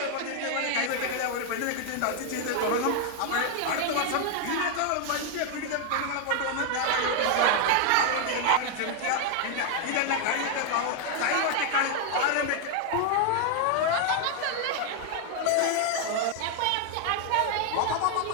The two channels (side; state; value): both; different; correlation 0.00